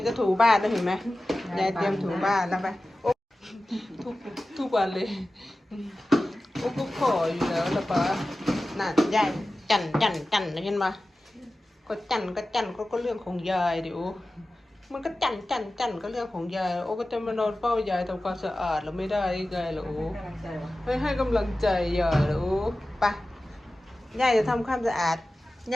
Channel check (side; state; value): both; normal; correlation 0.95